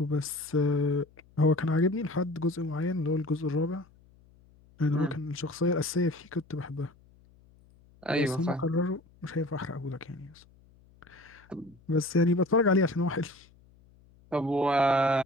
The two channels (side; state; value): left; noise; hum, 28 dB below the sound